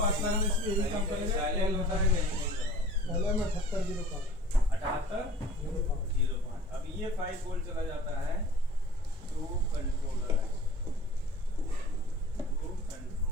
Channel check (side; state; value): both; normal; correlation 0.47